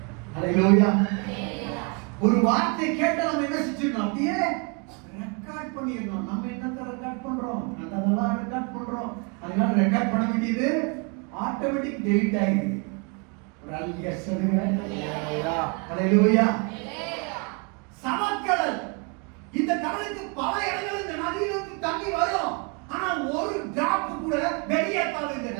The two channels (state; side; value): quieter; left; 33.4 dB